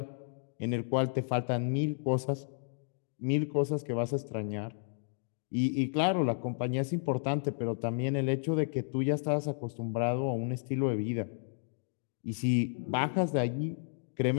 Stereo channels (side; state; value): right; silent; digital silence